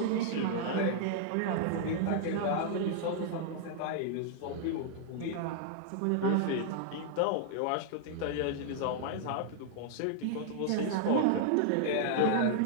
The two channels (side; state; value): both; different; correlation -0.01